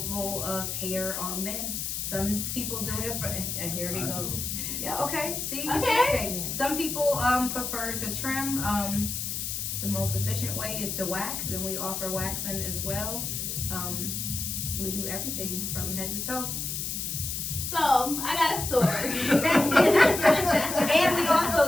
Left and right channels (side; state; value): left; noise; hiss, 3 dB below the sound